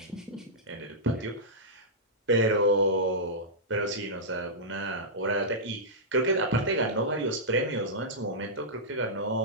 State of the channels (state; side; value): normal; both; correlation -0.12